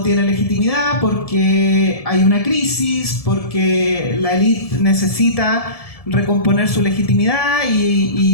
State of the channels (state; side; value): late; right; 1.7 ms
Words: tiene legitimidad, porque hay una crisis, porque la élite necesita recomponer su legitimidad